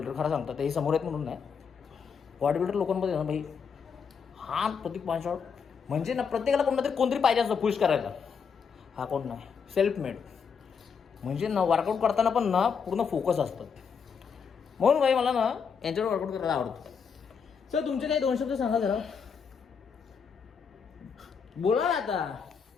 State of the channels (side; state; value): right; quieter; 6.3 dB